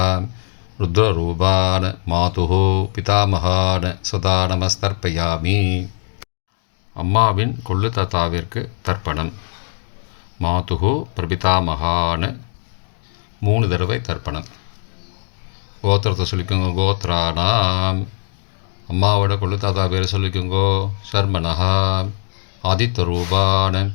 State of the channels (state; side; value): silent; right; digital silence